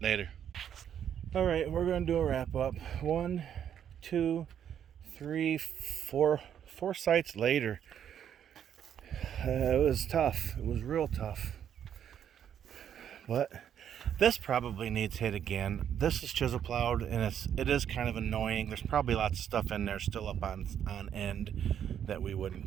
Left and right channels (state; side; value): quieter; left; 9.2 dB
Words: later. All right, we're gonna do a wrap up. 1, 2, 3, 4 sites later. It was tough. It was real tough. But this probably needs hit again. This is chisel plowed, and it is kind of annoying. There's probably lots of stuff in there still up on end that we wouldn't